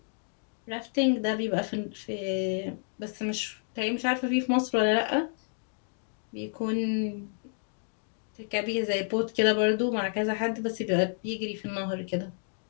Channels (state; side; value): silent; right; 58 dB below the other